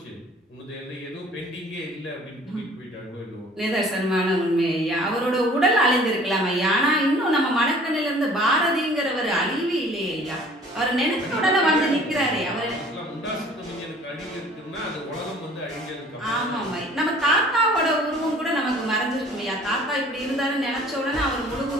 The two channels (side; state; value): both; normal; correlation 0.51